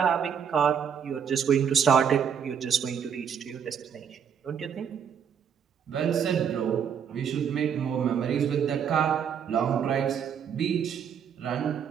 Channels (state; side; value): quieter; left; 7.7 dB